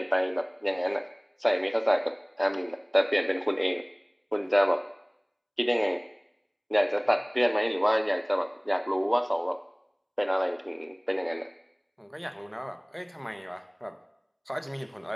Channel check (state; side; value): identical; both; correlation 1.00